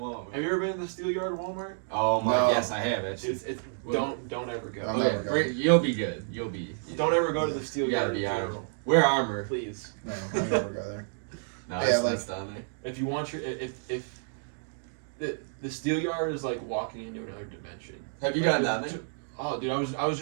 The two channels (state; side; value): silent; left; digital silence